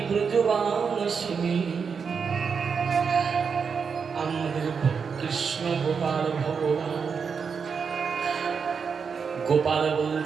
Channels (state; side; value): quieter; left; 6.0 dB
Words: ব্রজবাসিনী। আমাদের কৃষ্ণ গোপাল ভগবান। গোপাল